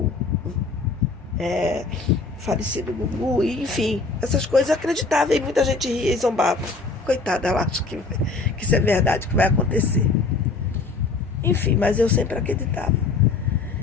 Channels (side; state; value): right; quieter; 4.0 dB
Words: falecido Gugu, e, enfim, essas coisas eu acreditava, e muita gente ria e zombava. Coitada, ela acha que isso é verdade, que vai acontecer. Enfim, mas eu sempre acreditava.